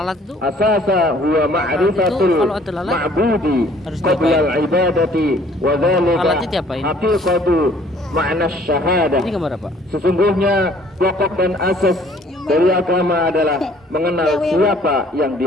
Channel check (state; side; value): normal; both; correlation 0.57